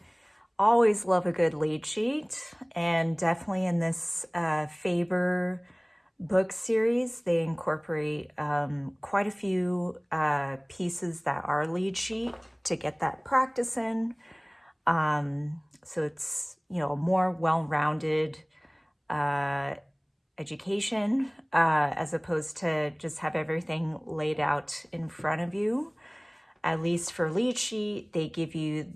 Always love a good lead sheet, and definitely in this Faber book series, they incorporate quite a few pieces that are lead sheet to get that practice in. So it's, a more well-rounded education as opposed to just have everything laid out in front of you. At least for lead sheet, they give you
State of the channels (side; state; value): both; identical; correlation 1.00